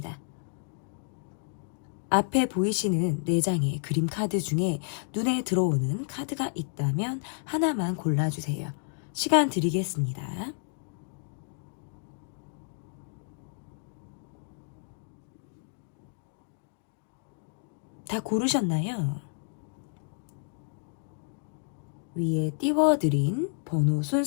앞에 보이시는 4장의 그림 카드 중에 눈에 들어오는 카드가 있다면 하나만 골라주세요. 시간 드리겠습니다. 다 고르셨나요? 위에 띄워드린 번호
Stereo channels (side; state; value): right; silent; digital silence